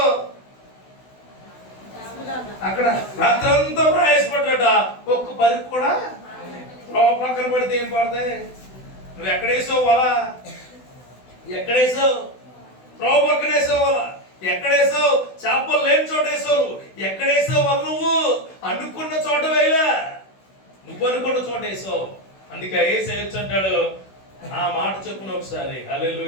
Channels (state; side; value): late; right; 16 ms